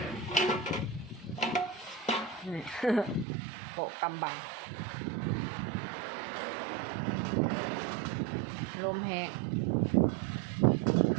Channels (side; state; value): left; drops out; at 3.2 s